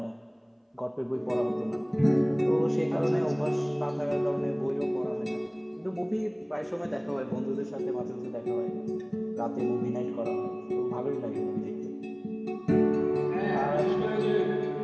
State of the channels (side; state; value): both; identical; correlation 1.00